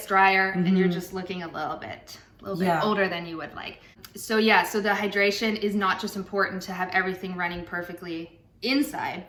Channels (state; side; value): identical; both; correlation 1.00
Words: drier, and you're just looking a little bit older than you would like. So so the hydration is not just important to have everything running perfectly inside,